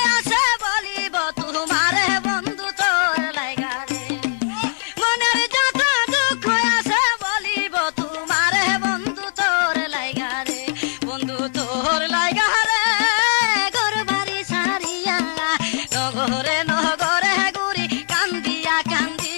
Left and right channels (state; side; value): silent; right; 65 dB below the other